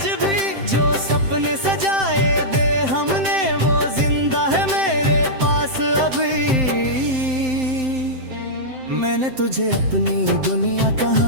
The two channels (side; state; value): left; late; 7.7 ms